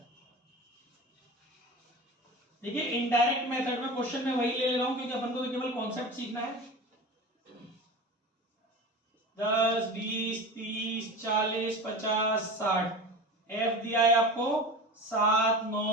देखिए इनडायरेक्ट मेथड में क्वेश्चन में वही ले रहा हूं क्योंकि अपन को तो केवल कॉन्सेप्ट सीखना है। 10, 20, 30, 40, 50, 60 एफ दिया है आपको 7,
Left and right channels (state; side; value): normal; both; correlation 0.31